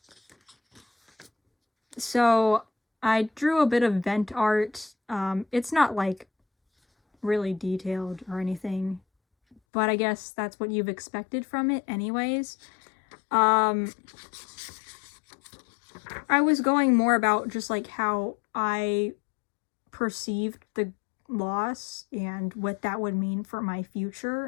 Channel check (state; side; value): drops out; right; at 9.6 s